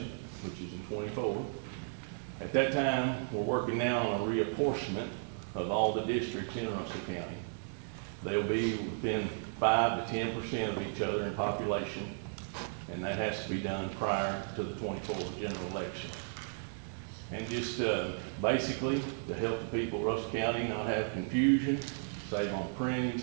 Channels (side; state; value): left; silent; 55 dB below the other